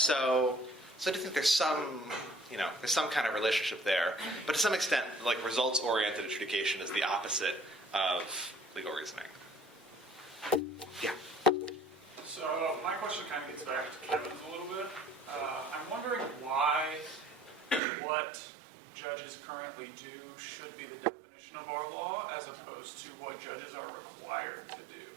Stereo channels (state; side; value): drops out; left; at 17.8 s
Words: I do think there's some kind of relationship there. But to some extent, results-oriented adjudication is the opposite of legal reasoning. Yeah. So my question kind of gets back to Kevin's a little bit. I'm wondering why what judges currently do should be the definition of our law as opposed to what judges are required to